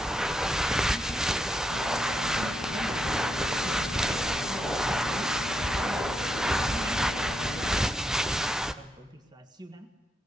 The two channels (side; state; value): both; normal; correlation 0.81